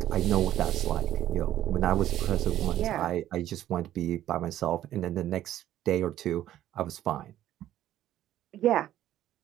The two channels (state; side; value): quieter; left; 12.7 dB